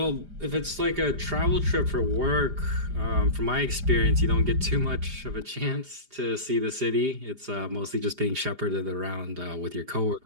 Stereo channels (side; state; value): left; late; 4.9 ms